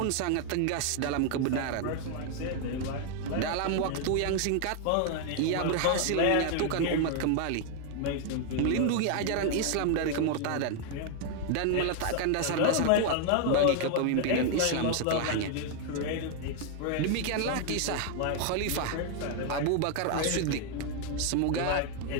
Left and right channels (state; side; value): different; both; correlation 0.00